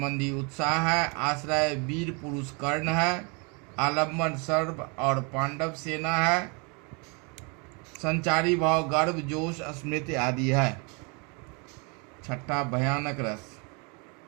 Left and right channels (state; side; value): quieter; left; 32.7 dB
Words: उत्साह है, आश्रय वीर पुरुष कर्ण है, आलम्बन सर्व और पांडव सेना है, संचारी भाव गर्व, जोश, स्मृति आदि है। छठा भयानक रस।